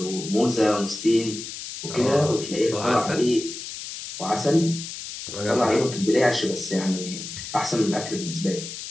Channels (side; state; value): left; noise; hiss, 9 dB below the sound